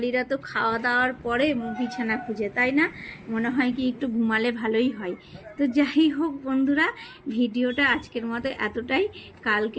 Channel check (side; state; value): both; identical; correlation 1.00